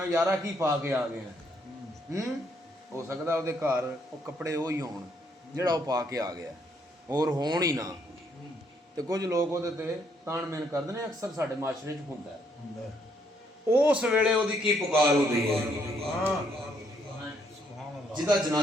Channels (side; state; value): both; normal; correlation 0.71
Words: ਯਾਰਾ ਕੀ ਪਾ ਕੇ ਆ ਗਏ ਹੋ ਸਕਦਾ ਉਹਦੇ ਘਰ ਉਹ ਕੱਪੜੇ ਉਹ ਹੀ ਹੋਣ ਜਿਹੜਾ ਉਹ ਪਾ ਕੇ ਆ ਗਿਆ ਹੋਰ ਹੋਣ ਹੀ ਨਾ ਤੇ ਕੁਝ ਲੋਕ ਉਹਦੇ ਤੇ ਤਾਣ ਮੇਨ ਕਰਦੇ ਨੇ ਅਕਸਰ ਸਾਡੇ ਮਾਸ਼ਰੇ 'ਚ ਹੁੰਦਾ ਉਸ ਵੇਲੇ ਉਹਦੀ ਕੀ ਪੁਕਾਰ ਹੁੰਦੀ ਹੈ ਜਿਹਦਾ